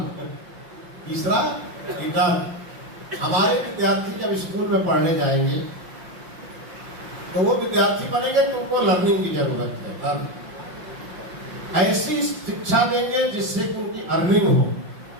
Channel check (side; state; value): left; late; 5.7 ms